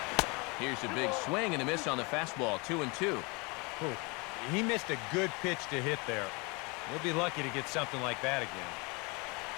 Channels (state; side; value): quieter; right; 28.8 dB